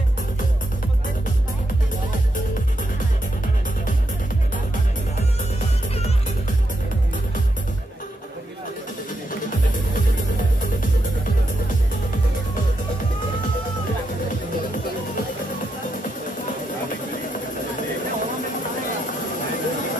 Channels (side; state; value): both; normal; correlation 0.83